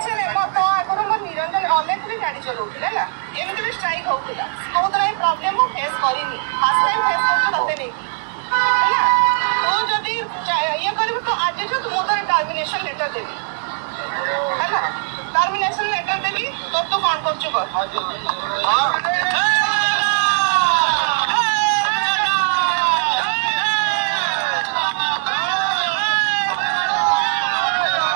टर्मिनेशन लेटर देवी है टर्मिनेशन लेटर देवी तो तू कौन कर चुका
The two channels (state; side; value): silent; left; digital silence